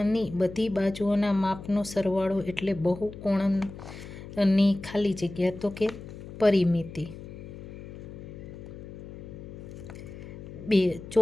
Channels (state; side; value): noise; left; hum, 13 dB below the sound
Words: બધી બાજુઓના માપનો સરવાળો એટલે બહુકોણની ખાલી જગ્યા, તો કે પરિમિતિ। 2,